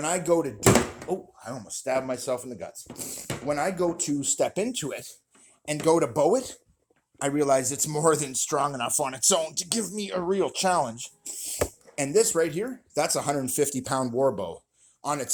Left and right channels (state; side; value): identical; both; correlation 1.00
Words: I go to do, oh, I almost stabbed myself in the guts. When I go to step into it and go to bow it, I realize it's more than strong enough on its own to give me a real challenge. And this right here, that's a 150-pound war bow on